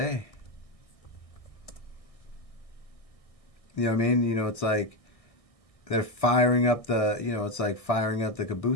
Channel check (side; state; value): right; late; 1.6 ms